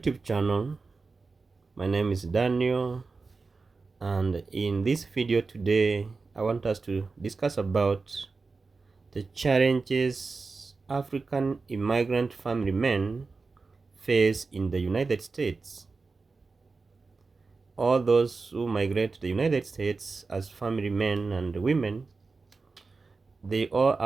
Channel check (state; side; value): quieter; left; 4.2 dB